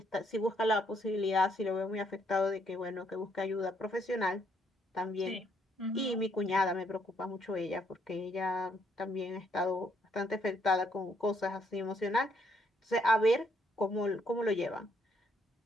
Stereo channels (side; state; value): both; normal; correlation 0.71